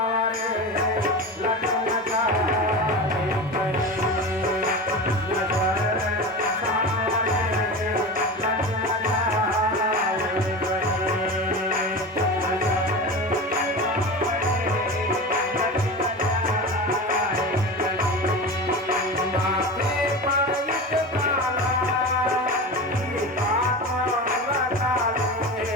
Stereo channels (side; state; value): both; normal; correlation 0.28